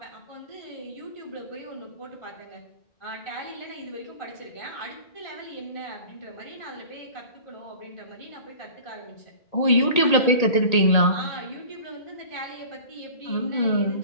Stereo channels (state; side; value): late; right; 1.8 ms